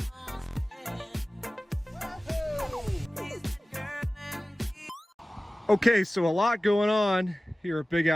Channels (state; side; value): normal; both; correlation 0.97